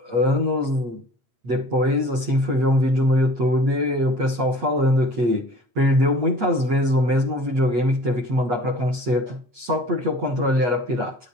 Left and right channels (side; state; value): left; late; 8.3 ms